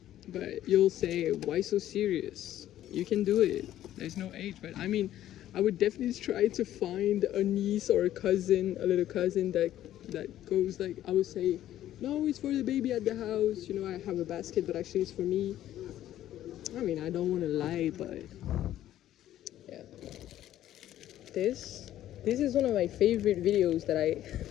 but you'll say, why so serious? You can do it. There's no age, but I mean, I would definitely try to find a niece or a cousin, a little cousin that goes like, I would say, no, it's for the baby at the house. You know, I have a basket, but actually it's for me. I mean, I don't want to lie, but yeah. This is one of my favorite videos that I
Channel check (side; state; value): right; quieter; 12.7 dB